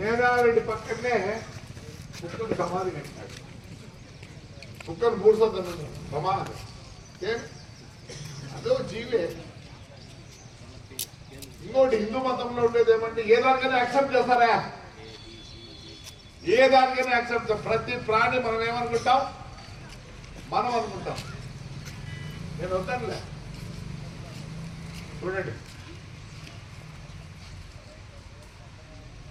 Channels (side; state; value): both; identical; correlation 1.00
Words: పక్కనే కుక్కకు సమాధి కట్టినాడు. కుక్కను పూడ్చొద్దు సమాధి అదో జీవే. ఇంకోటి హిందూ మతంలో ఉండేది ఏమంటే ఏ దానికైనా యాక్సెప్ట్ చేస్తారా, ఏ దానికైనా యాక్సెప్ట్. ప్రతి ప్రాణి మనం ఏమనుకుంటాం, మనం అనుకుంటాం. నేను వద్దానులే, చూడండి.